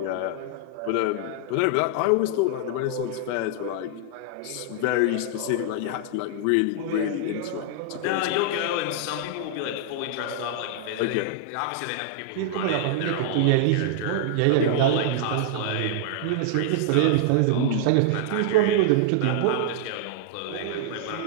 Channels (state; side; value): different; both; correlation -0.01